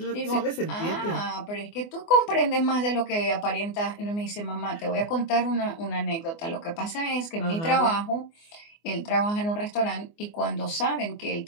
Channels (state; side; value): late; right; 24 ms